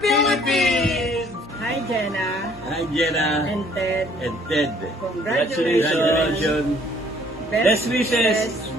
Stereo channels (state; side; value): normal; both; correlation 0.59